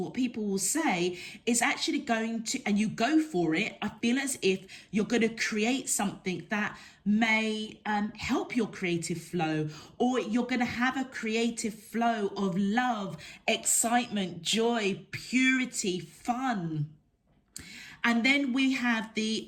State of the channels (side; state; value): both; identical; correlation 1.00